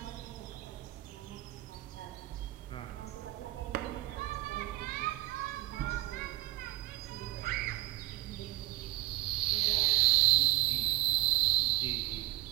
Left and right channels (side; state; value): left; quieter; 18.8 dB